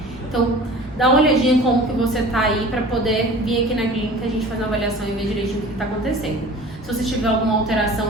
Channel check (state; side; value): normal; both; correlation 0.42